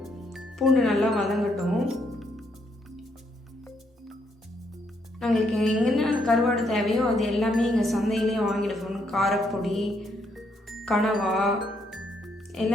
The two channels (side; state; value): both; normal; correlation 0.74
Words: பூண்டு நல்லா வதங்கட்டும். நாங்களுக்கு எங்கன்னா கருவாடு தேவையோ அது எல்லாமே எங்கள் சந்தையிலே வாங்கிடுவோம். காரப்பொடி, கனவா